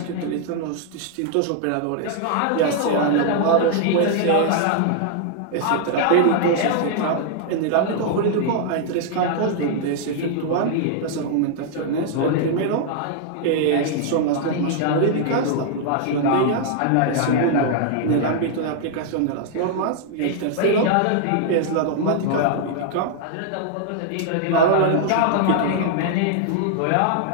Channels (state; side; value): different; both; correlation -0.01